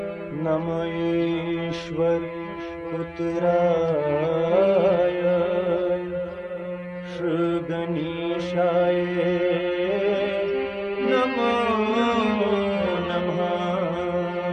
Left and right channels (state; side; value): identical; both; correlation 1.00